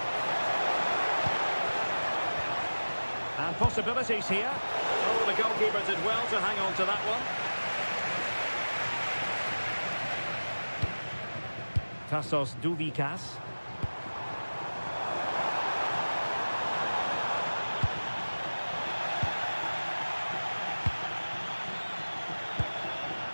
And possibilities here. Oh, the goalkeeper did well to hang on to that one. Tassos Douvikas.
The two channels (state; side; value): inverted; both; correlation -1.00